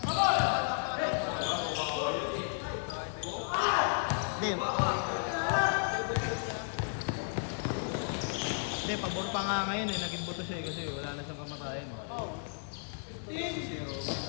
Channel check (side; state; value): right; silent; 55 dB below the other